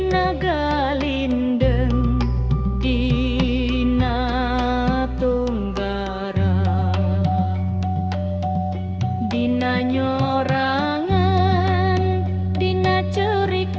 galindeng dina tunggara dina nyorangan dina cerik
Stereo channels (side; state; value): both; identical; correlation 1.00